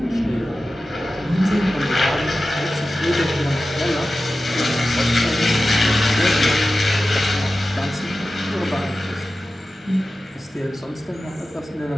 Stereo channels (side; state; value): both; normal; correlation 0.94